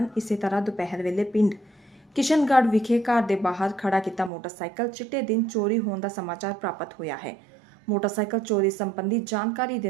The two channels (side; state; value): left; drops out; at 4.3 s